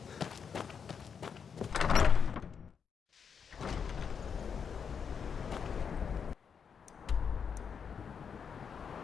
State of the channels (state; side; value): quieter; right; 6.7 dB